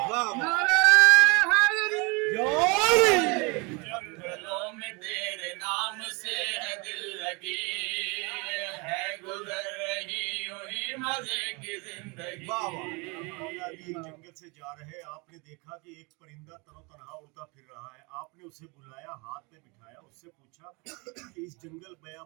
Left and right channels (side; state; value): left; quieter; 29.1 dB